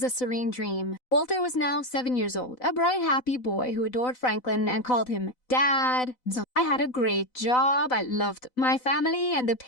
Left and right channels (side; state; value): right; late; 4.0 ms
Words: a serene dream. Walter was now 7 years old, a bright, happy boy who adored Franklin and called him Dad. I had a great job, I loved my family, and the